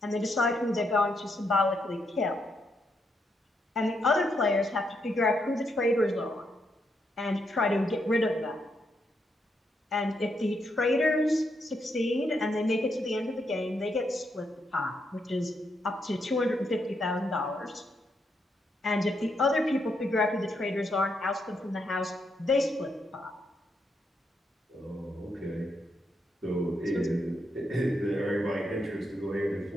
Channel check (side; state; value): both; normal; correlation 0.79